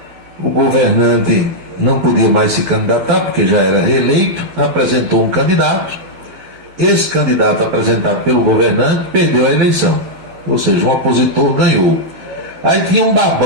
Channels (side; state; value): left; late; 12 ms